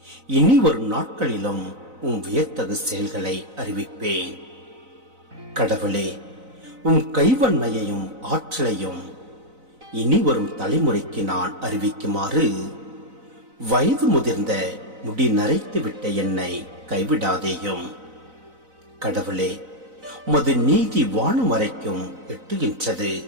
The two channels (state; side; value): late; left; 4.0 ms